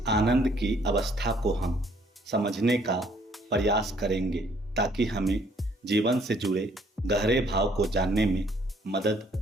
आनंद की अवस्था को हम समझने का प्रयास करेंगे ताकि हमें जीवन से जुड़े गहरे भाव को जानने में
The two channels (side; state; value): both; normal; correlation 0.63